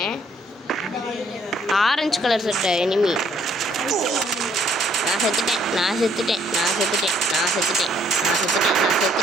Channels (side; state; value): both; normal; correlation 0.65